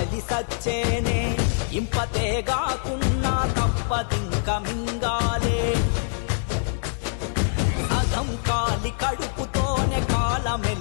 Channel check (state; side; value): silent; right; 62 dB below the other